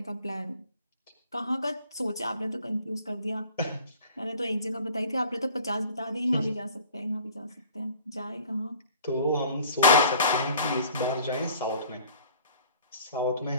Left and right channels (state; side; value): inverted; both; correlation -0.50